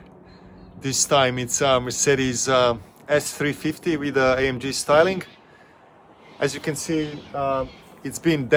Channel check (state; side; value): identical; both; correlation 1.00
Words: This time it's a Mercedes S350 with AMG styling. As you can see, it's been